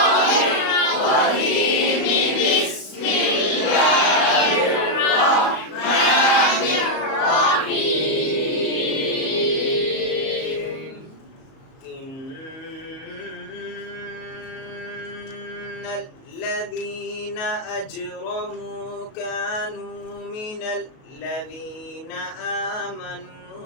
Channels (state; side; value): late; right; 38 ms